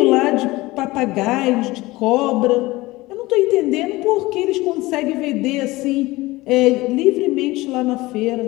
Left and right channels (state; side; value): quieter; right; 20.0 dB